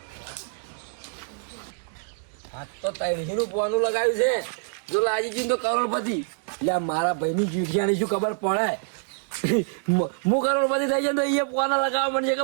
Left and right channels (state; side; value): silent; left; digital silence